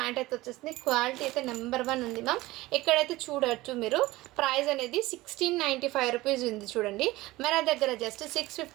అయితే వచ్చేస్తుంది. క్వాలిటీ అయితే నెంబర్ 1 ఉంది మ్యామ్. ఇక్కడైతే చూడవచ్చు మీరు. ప్రైస్ అనేది 1695 రూపీస్ ఉంది చూడండి. మన దగ్గర జస్ట్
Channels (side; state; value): left; quieter; 18.9 dB